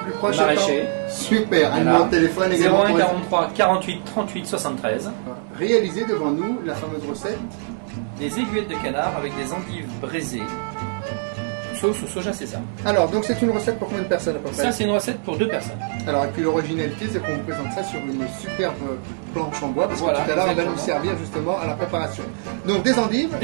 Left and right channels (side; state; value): left; silent; digital silence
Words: proche. Maraîcher. Super, un numéro de téléphone également. 01 43 48 38 73. Réalisez devant nous la fameuse recette. Des aiguillettes de canard avec des endives braisées, sauce au soja sésame. Alors, donc c'est une recette pour combien de personnes à peu près? Ça, c'est une recette pour 2 personnes. Alors, et puis l'originalité, c'est qu'on vous présente ça sur une superbe planche en bois, parce Voilà, que tout à l'heure, on va exactement. nous servir justement à la préparation. Donc, des endives.